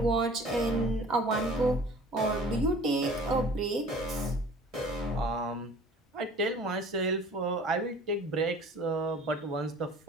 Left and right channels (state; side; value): normal; both; correlation 0.47